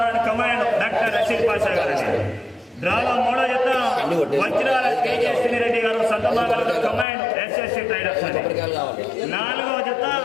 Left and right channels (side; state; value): right; drops out; at 7.1 s